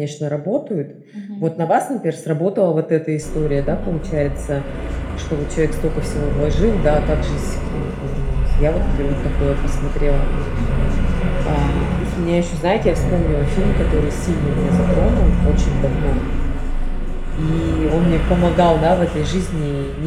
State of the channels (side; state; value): both; identical; correlation 1.00